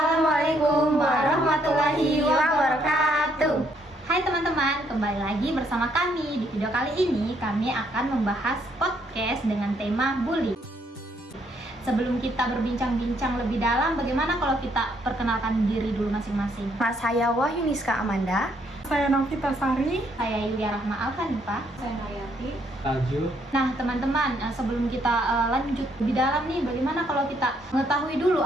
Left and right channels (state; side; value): normal; both; correlation 0.70